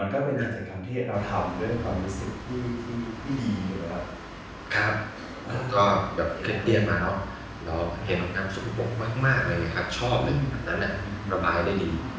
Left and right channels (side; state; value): both; identical; correlation 1.00